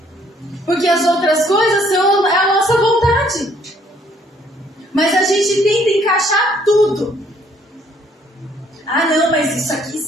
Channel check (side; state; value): both; normal; correlation 0.64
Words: Porque as outras coisas são a nossa vontade. Mas a gente tenta encaixar tudo. Ah, não, mas isso aqui